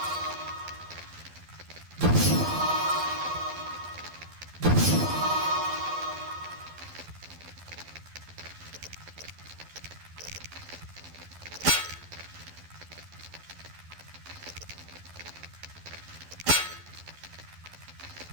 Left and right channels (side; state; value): left; late; 12 ms